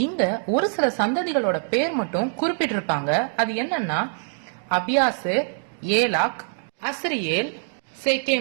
இங்க ஒரு சில சந்ததிகளோட பேர் மட்டும் குறிப்பிட்டிருப்பாங்க. அது என்னன்னா, அபியாசேர், ஏலாக், அஸ்ரியேல்,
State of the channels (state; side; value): silent; left; 63 dB below the other